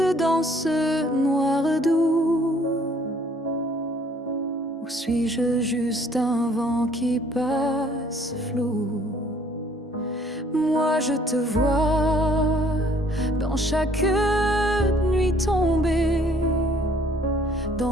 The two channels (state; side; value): normal; both; correlation 0.60